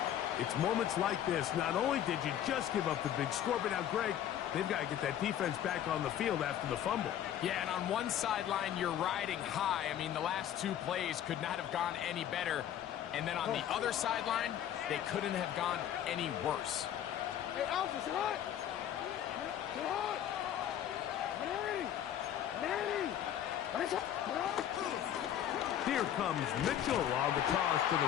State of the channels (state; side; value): quieter; right; 10.7 dB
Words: it's moments like this. Not only did you just give up the big score, but now, Greg, they've got to get that defense back on the field after the fumble. Yeah, and on one sideline, you're riding high. I mean, the last 2 plays could not have gone any better. And then on the other sideline, they couldn't have gone any worse. Hey, Alpha, it's hot. It's hot. Here comes Mitchell on the toss to